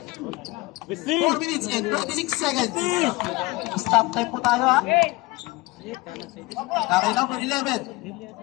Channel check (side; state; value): right; quieter; 21.5 dB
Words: 4 minutes and 26 seconds. Stop time po tayo ha. Nakay number 11.